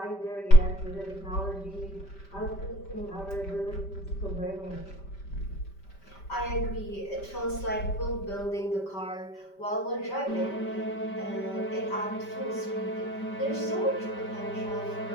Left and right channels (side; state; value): right; late; 5.1 ms